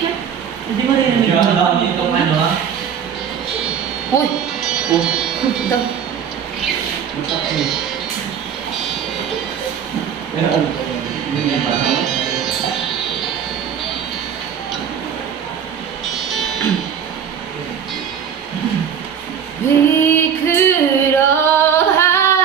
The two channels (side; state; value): left; quieter; 8.0 dB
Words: Hindi mo rin hindi. Alam mo itong ano ha? Uy! Oh. Ito. We could all